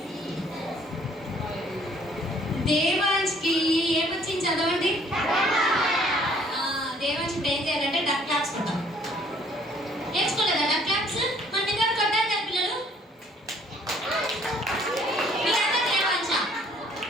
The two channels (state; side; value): normal; both; correlation 0.60